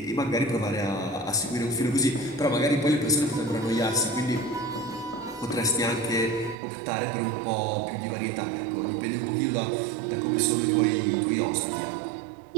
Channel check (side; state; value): left; drops out; at 6.6 s